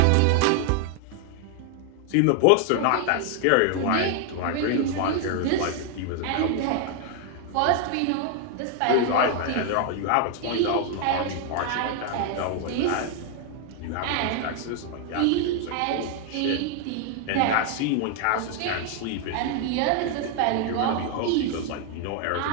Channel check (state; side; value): different; both; correlation 0.00